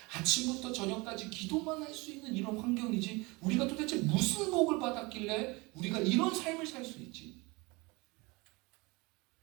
아침부터 저녁까지 기도만 할 수 있는 이런 환경이지? 우리가 도대체 무슨 복을 받았길래 우리가 이런 삶을 살 수 있지?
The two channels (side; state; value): left; quieter; 25.3 dB